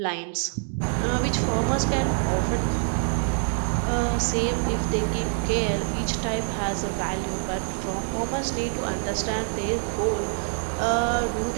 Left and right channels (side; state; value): left; silent; 61 dB below the other